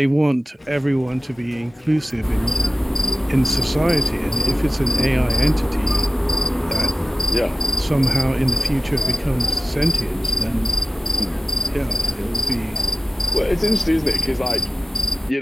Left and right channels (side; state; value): both; normal; correlation 0.95